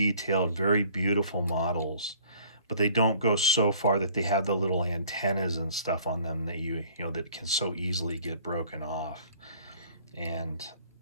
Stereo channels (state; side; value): inverted; both; correlation -0.54